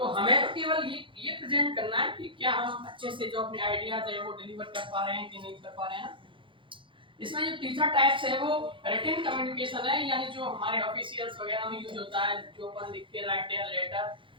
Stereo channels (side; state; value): left; late; 0.25 ms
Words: हमें तो केवल ये प्रेजेंट करना है कि क्या हम अच्छे से जो अपने आइडियाज है वो डिलीवर कर पा रहे हैं कि नहीं कर पा रहे हैं। इसमें जो तीसरा टाइप्स है वो रिटन कम्युनिकेशन है, यानी जो हमारे ऑफिशियल्स वगैरह में यूज होता है, जो अपन लिख के राइट या लेटर